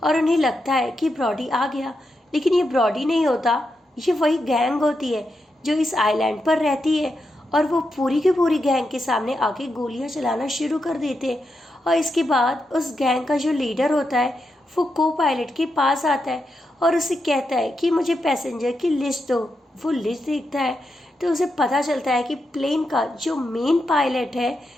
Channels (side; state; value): both; normal; correlation 0.85